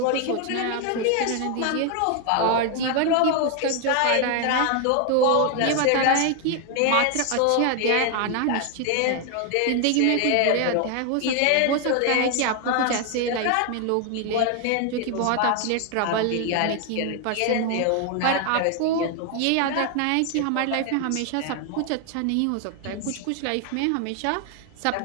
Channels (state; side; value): different; both; correlation 0.01